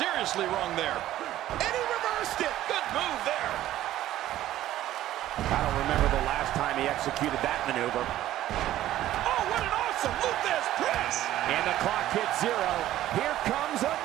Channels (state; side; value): quieter; left; 13.7 dB